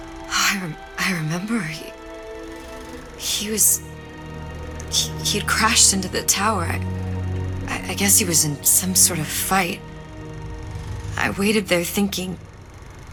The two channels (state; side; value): identical; both; correlation 1.00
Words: Oh, I remember he'd crashed into the tower. I guess he was in some sort of fight. I waited there thinking